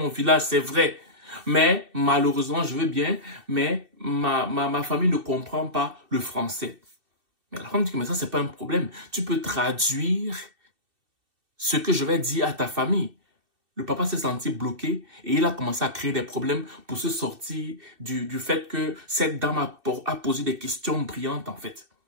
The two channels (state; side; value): late; left; 2.6 ms